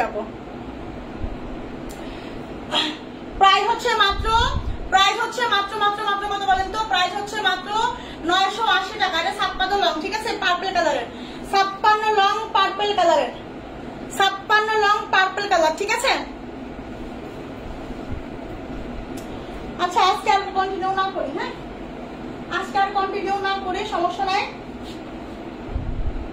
আপু। প্রাইস হচ্ছে মাত্র কত বলেন তো, প্রাইস হচ্ছে মাত্র 980 টাকা, এটা 56 লং, ঠিক আছে, পার্পল কালারের, 56 লং পার্পল কালারের, 56 লং পার্পল কালার, ঠিক আছে। আচ্ছা আজকে আর কন্টিনিউ না করি, হ্যাঁ আজকে আর কন্টিনিউ না করে সমস্যা নাই।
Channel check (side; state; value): both; identical; correlation 1.00